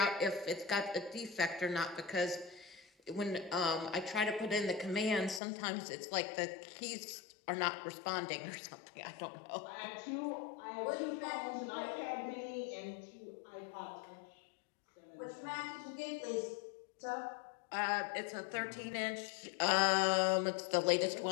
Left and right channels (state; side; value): drops out; right; at 5.4 s